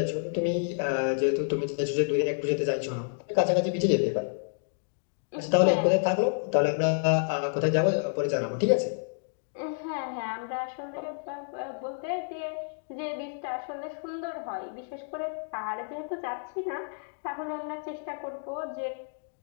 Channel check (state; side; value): silent; right; digital silence